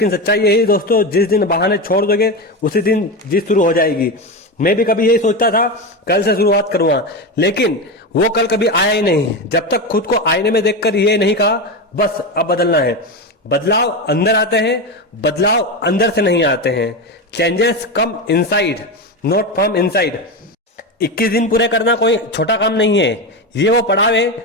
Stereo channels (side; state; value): both; normal; correlation 0.17